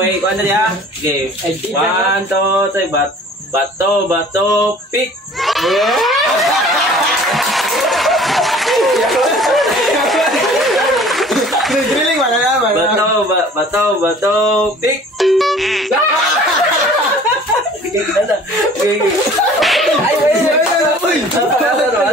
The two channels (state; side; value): normal; both; correlation 0.49